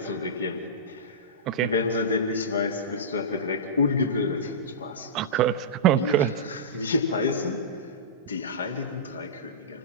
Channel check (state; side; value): normal; both; correlation -0.18